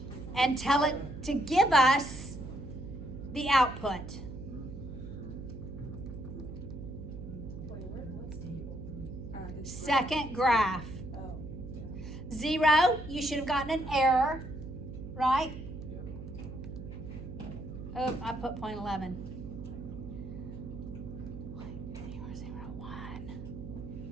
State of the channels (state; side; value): noise; right; hum, 10 dB below the sound